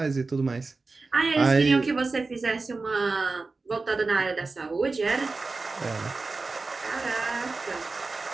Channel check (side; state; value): left; quieter; 3.8 dB